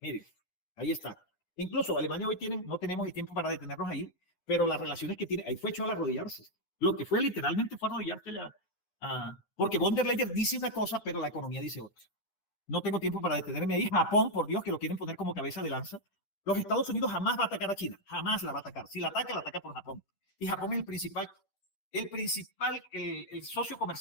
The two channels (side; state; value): right; late; 10 ms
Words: Miren, ahí está. Incluso Alemania hoy no tenemos el tiempo para detenernos ahí, pero las relaciones que tiene, ahí fue hecho al arrodillarse. Lo que fue literalmente fue arrodillarse porque von der Leyen dice una cosa, pero la economía dice otra. No tengo tiempo para detenerme ahí. Japón, por Dios, que lo quieren poner como cabeza de lanza. Los Estados Unidos jamás va a atacar a China, jamás la va a atacar. Si la ataca por Japón. Y Japón es el socio